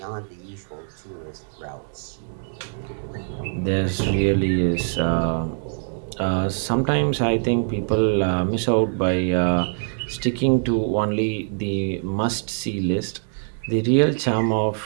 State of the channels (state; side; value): silent; left; digital silence